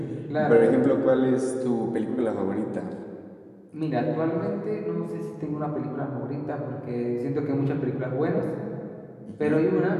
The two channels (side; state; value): both; identical; correlation 1.00